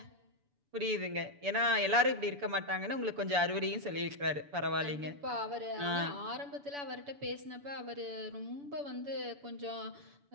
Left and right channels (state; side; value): late; left; 7.0 ms